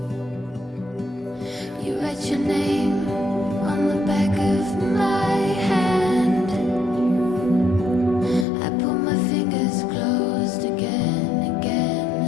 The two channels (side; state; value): right; drops out; at 8.5 s